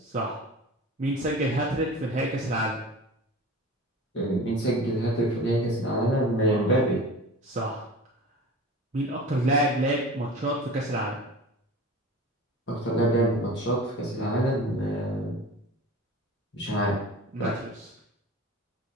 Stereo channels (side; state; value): both; normal; correlation 0.37